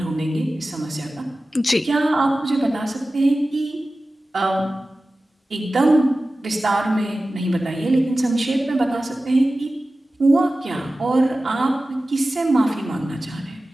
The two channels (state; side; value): normal; both; correlation 0.96